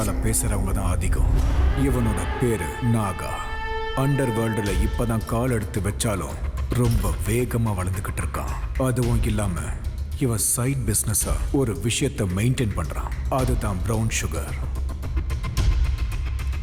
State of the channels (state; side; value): identical; both; correlation 1.00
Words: பேசுறவங்க தான் அதிகம். இவனோட பேரு நாகா. அண்டர் வேர்ல்டுல இப்பதான் கால் எடுத்து வச்சாலும் ரொம்ப வேகமா வளர்ந்துகிட்டு இருக்கான். அதுவும் இல்லாம இவன் சைட் பிசினஸா ஒரு விஷயத்தை மெயின்டைன் பண்றான். அதுதான் பிரவுன் சுகர்.